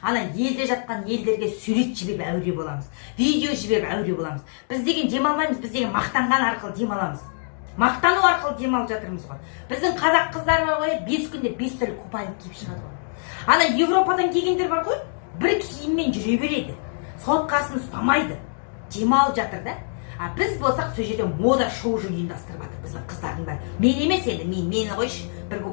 елде жатқан елдерге сурет жіберіп әуре боламыз. Видео жіберіп әуре боламыз. Біз деген демалмаймыз, біз деген мақтанған арқылы демаламыз. Мақтану арқылы демалып жатырмыз ғой. Біздің қазақ қыздар бар ғой, 5 күнде 5 түрлі купальник киіп шығады ғой. Ана Европадан келгендер бар ғой, бір киіммен жүре береді. Соткасын ұстамайды. Демалып жатыр да. А біз болсақ сол жерде мода шоу ұйымдастырып жатыр біздің қыздардың бәрі. Мен емес енді, мені қойшы, бір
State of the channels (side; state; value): right; silent; digital silence